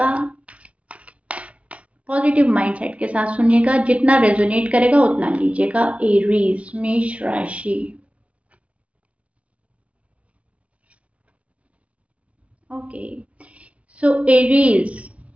पॉजिटिव माइंडसेट के साथ सुनिएगा। जितना रेजोनेट करेगा उतना लीजिएगा। एरीज, मेष राशि। ओके, सो एरीज,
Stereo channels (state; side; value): late; left; 0.064 ms